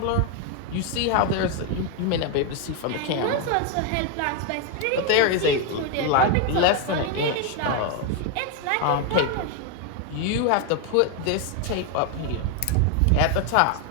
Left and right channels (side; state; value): both; different; correlation 0.01